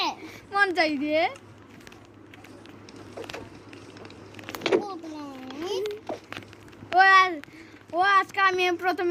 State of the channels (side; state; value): both; identical; correlation 1.00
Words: মন চাই দিয়ে ও আজকে আমি